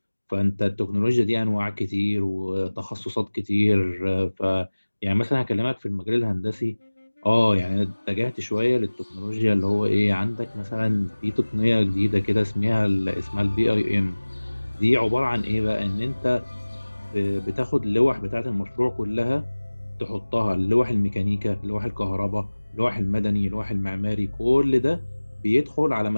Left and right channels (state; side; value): inverted; both; correlation -1.00